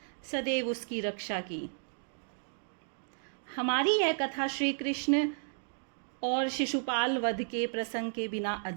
सदैव उसकी रक्षा की। हमारी यह कथा श्री कृष्ण और शिशुपाल वध के प्रसंग के बिना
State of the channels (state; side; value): silent; left; digital silence